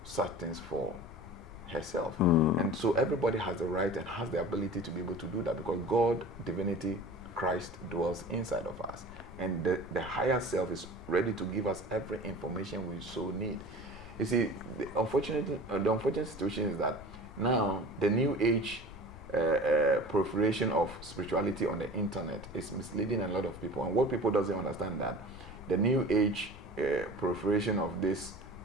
such things for herself. And so everybody has the right and has the ability to be able to do that, because God, divinity, Christ dwells inside of us. And the higher self is ready to give us every information we so need. You see, the unfortunate situation is that now the new age proliferation of spirituality on the internet is misleading a lot of people. And what people doesn't understand, that the new age proliferation of this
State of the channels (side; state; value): left; noise; rumble, 15 dB below the sound